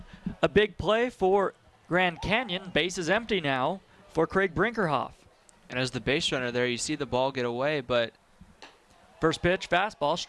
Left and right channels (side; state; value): both; identical; correlation 1.00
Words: a big play for Grand Canyon. Base is empty now for Craig Brinkerhoff. And as the base runner there, you see the ball get away, but first pitch, fastball,